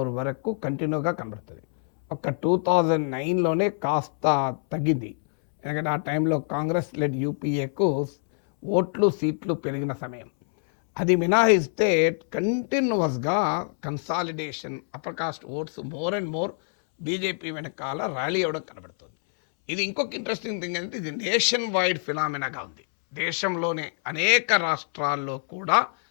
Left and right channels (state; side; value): silent; right; 61 dB below the other